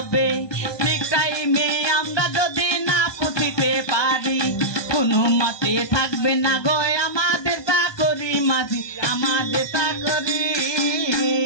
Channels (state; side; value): late; right; 1.2 ms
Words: ঠিক টাইমে আমরা যদি না পৌঁছিতে পারি কোনো মতে থাকবে না গো আমাদের। আমাদের চাকরি।